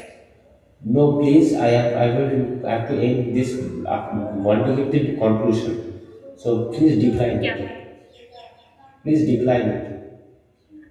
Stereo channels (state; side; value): identical; both; correlation 1.00